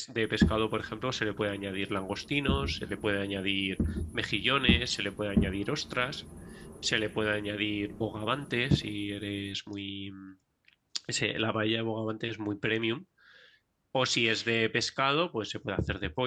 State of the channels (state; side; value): identical; both; correlation 1.00